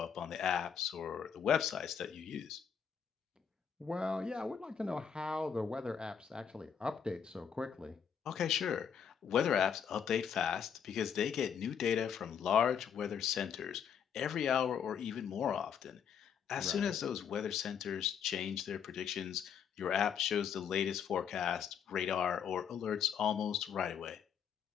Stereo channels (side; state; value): right; quieter; 7.7 dB